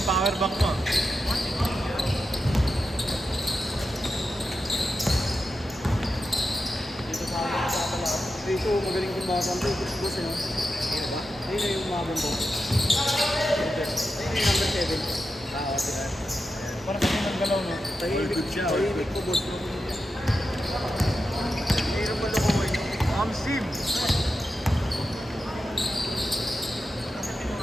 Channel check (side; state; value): both; normal; correlation 0.89